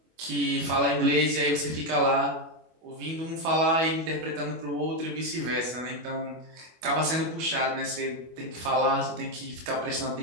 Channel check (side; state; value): left; late; 25 ms